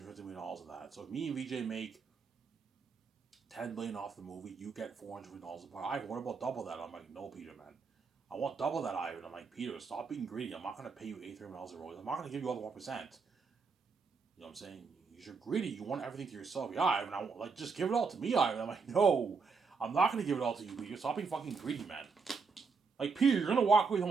million of that. So if me and VJ make $10 million off the movie, you get $400 million. Ivan, what about double that? I'm like, no, Peter, man. I want double that, Ivan. I'm like, Peter, stop being greedy. I'm not going to pay you $83 million of royalties. I'm not going to give you all the 1%. You know what I'm saying? You're greedy. You want everything to yourself. Yeah, Ivan, just give it all to me, Ivan. I'm like, no, I'm not going to give it all to you, Peter. Stop being fucking greedy, man. Like, Peter, you're going to walk away with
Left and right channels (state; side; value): quieter; left; 5.0 dB